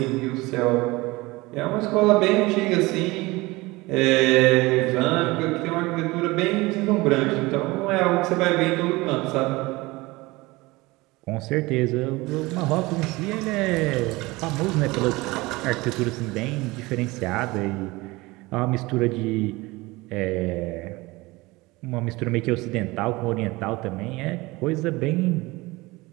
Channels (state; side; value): quieter; left; 21.8 dB